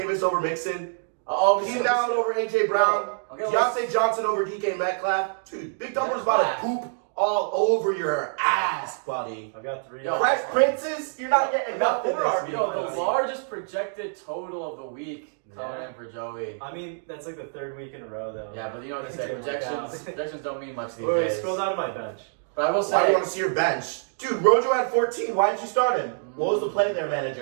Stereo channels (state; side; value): silent; left; digital silence